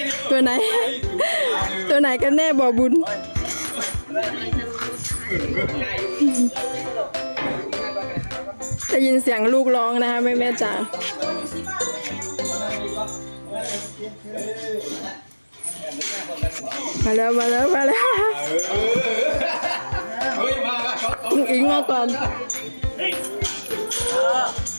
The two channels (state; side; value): inverted; both; correlation -1.00